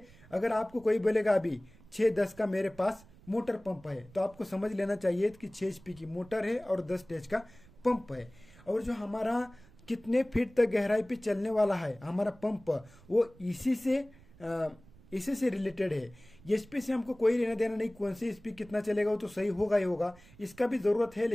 अगर आपको कोई बोलेगा अभी 6-10 का मेरे पास मोटर पंप है, तो आपको समझ लेना चाहिए कि 6 HP की मोटर है और 10 स्टेज का पंप है। और जो हमारा कितने फीट तक गहराई पे चलने वाला है हमारा पंप, वो इसी से रिलेटेड है। एचपी से हमको कोई लेना देना नहीं, कौन सी एचपी कितना चलेगा वो तो सही होगा ही होगा, इसका भी जरूरत है,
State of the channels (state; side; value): noise; right; rumble, 24 dB below the sound